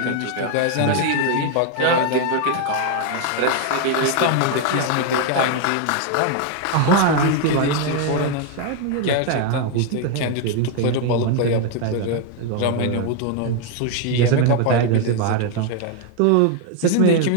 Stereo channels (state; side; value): different; both; correlation 0.01